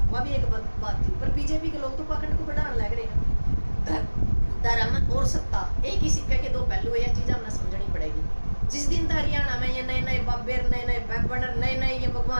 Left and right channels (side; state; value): both; inverted; correlation -1.00